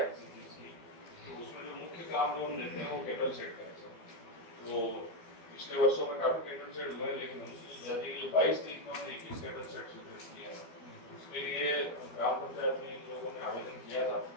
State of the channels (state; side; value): late; right; 12 ms